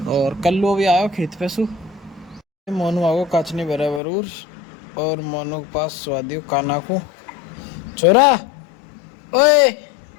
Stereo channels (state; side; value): drops out; right; at 4.0 s